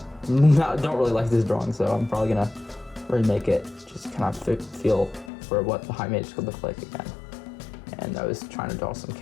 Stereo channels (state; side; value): drops out; right; at 5.3 s